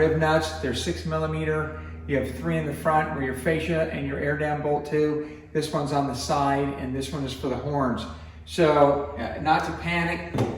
nuts. They're 6mm. You have 3 in the front where your fascia and your air dam bolt to. This one's on the side, and this one is for the horns. So not to panic,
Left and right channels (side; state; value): both; identical; correlation 1.00